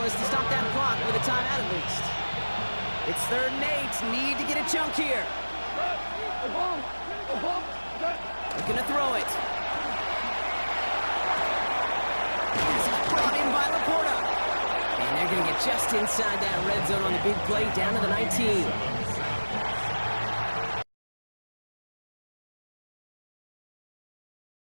to stop that clock with a timeout at least. It's third and 8. Need to get a chunk here. Looking to throw it. This is brought in by Laporta. And they're going to get just inside that red zone on the big play down to the 19.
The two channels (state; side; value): inverted; both; correlation -1.00